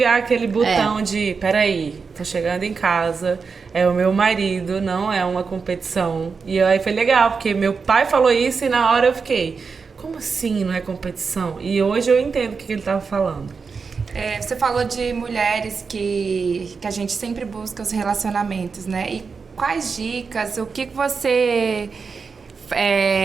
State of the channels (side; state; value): left; quieter; 5.1 dB